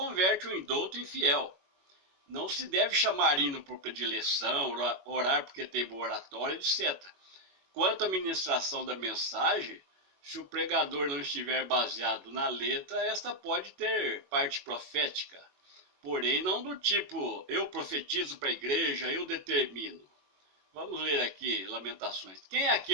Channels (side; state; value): left; late; 21 ms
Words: o indouto em fiel. Não se deve chamar hino por predileção, orar porque tem boa oratória, etc. Quanto à ministração da mensagem, se o pregador não estiver baseado na letra, esta pode ter parte profética, porém não do tipo, eu profetizo para a igreja, eu determino. Vamos ler aqui Lamentações. Quem é